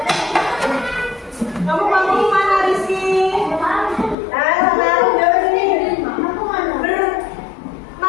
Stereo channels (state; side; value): drops out; right; at 4.2 s